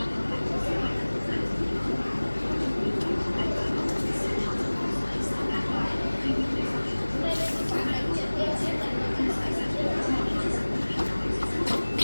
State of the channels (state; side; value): inverted; both; correlation -1.00